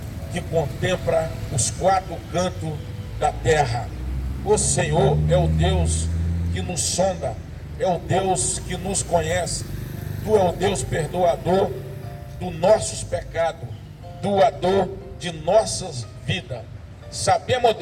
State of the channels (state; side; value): identical; both; correlation 1.00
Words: que contempla os quatro cantos da terra. O Senhor é o Deus que nos sonda, é o Deus que nos conhece. Tu é o Deus perdoador dos nossos pecados, doador de nossas vidas. Sabemos,